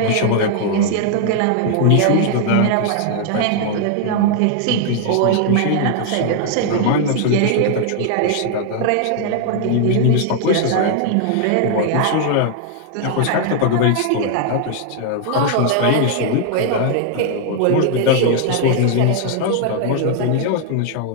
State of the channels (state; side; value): different; both; correlation 0.00